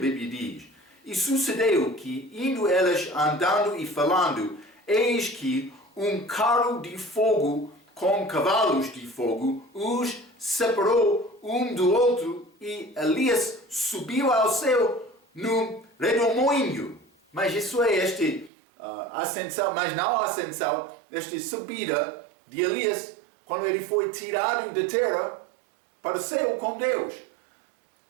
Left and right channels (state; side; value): drops out; left; at 18.5 s